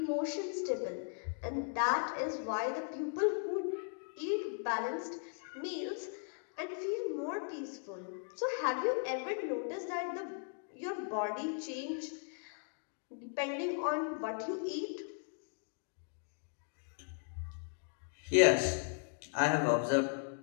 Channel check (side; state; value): right; silent; 53 dB below the other